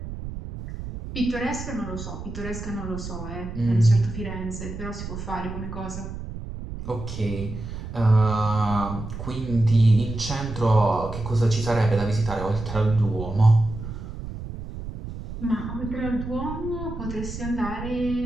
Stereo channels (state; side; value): noise; right; rumble, 9 dB below the sound